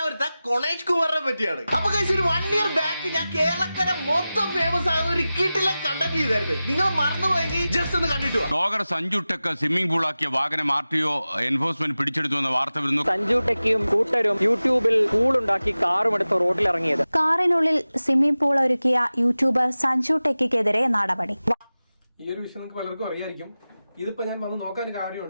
കൊണേഷ് കുമാറിനെ പറ്റിയാണ്. അപ്പൊ കഴിച്ച് ഒരു 1 year ബാക്ക് ഞാൻ കേരളക്കര മൊത്തം ഫേമസ് ആകുന്ന ഒരു കിട്ടിലെ കണ്ടന്റ് ചെയ്തായിരുന്നു. നിങ്ങൾ മറന്നുപോയെങ്കിൽ ജസ്റ്റ് ഒന്ന് കണ്ടിട്ട് ബ്ലോഗർ സഞ്ജു ടെക്ക് സ്വിമ്മിംഗ് പൂളാക്കിയ വാഹനം RTO എൻഫോഴ്സ്മെന്റ് പിടിച്ചെടുത്തു എന്ന വാർത്ത വരുന്നു. സഞ്ജു ടെക്കിയും കൂട്ടരും യൂട്യൂബിൽ പൂളുണ്ടാക്കി കാറും എടുത്ത് റോഡിൽ ഇറങ്ങിയത്. കാറിനുള്ളിൽ സ്വിമ്മിംഗ് പൂൾ ഒരുക്കിയ യൂട്യൂബർ സഞ്ജു ടെക്കിക്കെതിരെ നടപടി. ഈ ഒരു വിഷയം നിങ്ങൾക്ക് പലർക്കും അറിയായിരിക്കും. ഇതിപ്പോ ഞാൻ വന്ന് നോക്കാൻ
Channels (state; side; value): inverted; both; correlation -0.96